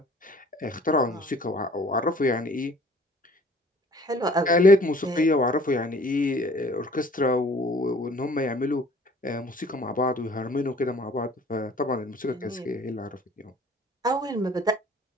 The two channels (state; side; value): normal; both; correlation 0.52